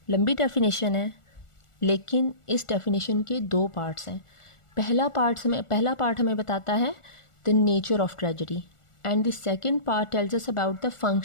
लंबी definition है, लेकिन इस definition के 2 parts हैं। पहला part हमें बताता है the nature of tragedy, and the second part tells us about the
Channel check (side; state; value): right; late; 1.4 ms